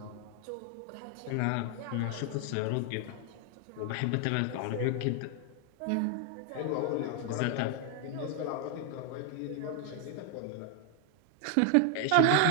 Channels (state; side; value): different; both; correlation 0.00